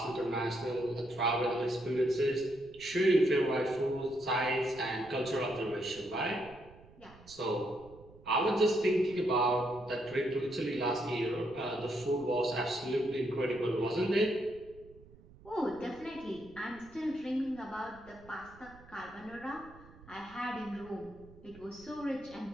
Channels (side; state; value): right; noise; rumble, 22 dB below the sound